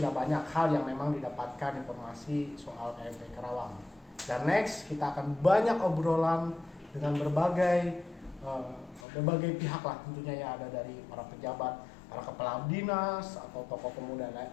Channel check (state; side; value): drops out; right; at 9.1 s